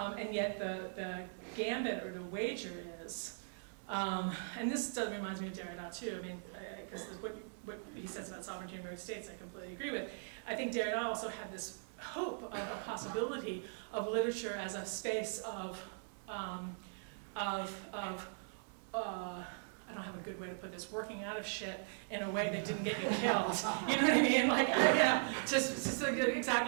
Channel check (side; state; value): left; silent; digital silence